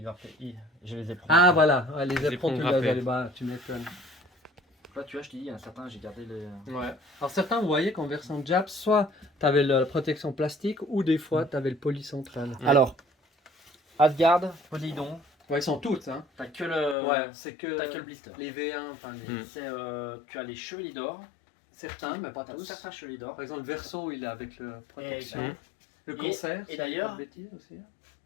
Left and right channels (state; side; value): drops out; right; at 16.9 s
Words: grappé. Je les ai pris. Ah voilà, ouais, les Les éperons, tu ponts grappés. les bas, tu m'étonnes. Là, tu vois, je t'ai dit, il y en a certains, j'ai gardé les. Ouais. Alors certains, vous voyez qu'en version Jap, soit tu avais la protection plastique ou des fois tu avais le poli central. Ouais. Alors, Asgard, Poseidon, Ouais, ils sont toutes, hein. t'as que le. Ouais, c'est que, T'as que le blister. les V1, enfin les... Mm. C'est, tu as les chevaliers d'or. certains, mais pas T'as tous. certains chevaliers d'or. Par exemple, le Verso, il est avec le protection. Mm. Le Et- concert, et si d'ailleurs- je dis pas de bêtises aussi.